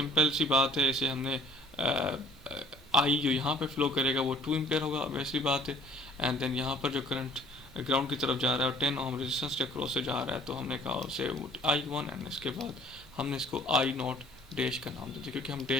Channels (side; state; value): both; normal; correlation 0.56